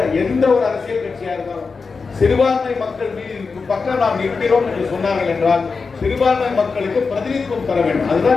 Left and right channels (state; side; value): quieter; right; 4.7 dB